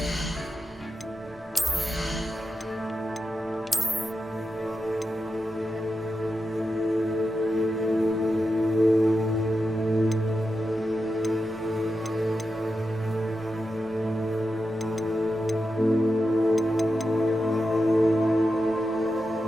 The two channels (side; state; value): both; normal; correlation 0.89